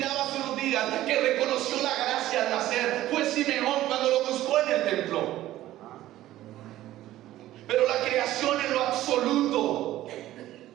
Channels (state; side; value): quieter; left; 14.6 dB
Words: hace unos días que reconoció la gracia al nacer fue Simeón cuando lo buscó en el templo. Pero la creación en lo absoluto